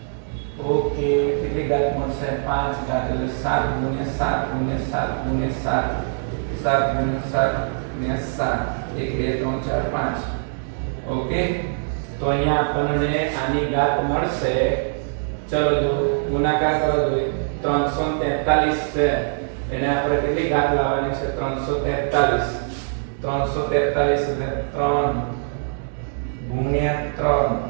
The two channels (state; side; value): silent; left; digital silence